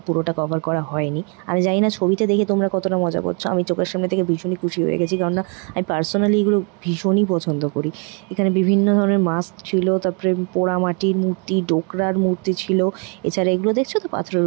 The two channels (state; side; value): quieter; left; 35.8 dB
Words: পুরোটা কভার করা হয়নি। আমি জানি না ছবিতে দেখে তোমরা কতটা মজা করছো, আমি চোখের সামনে থেকে ভীষণই খুশি হয়ে গেছি, কারণ না আমি পার্সোনালি এগুলো ভীষণই পছন্দ করি। এখানে বিভিন্ন ধরনের মাস্ক ছিল, তারপরে পোড়া মাটির মূর্তি, ডোকরার মূর্তি ছিল। এছাড়া এগুলো দেখছো তো পাথরের